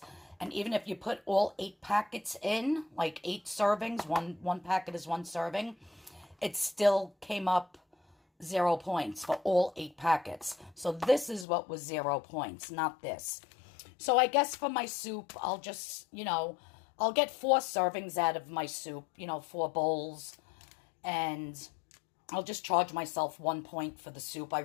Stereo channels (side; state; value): right; drops out; at 11.5 s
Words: And even if you put all 8 packets in, like 8 servings, one packet is 1 serving, it still came up 0 points for all 8 packets. So this is what was 0 points, not this. So I guess for my soup, I'll just, I'll get 4 servings out of my soup, 4 bowls. And I'll just charge myself 1 point for the soup. I